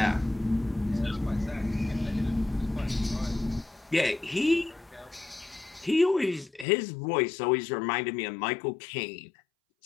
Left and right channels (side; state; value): right; drops out; at 6.7 s